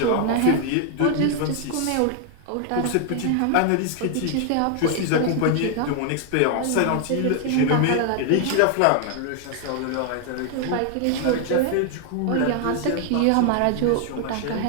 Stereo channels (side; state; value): both; different; correlation 0.00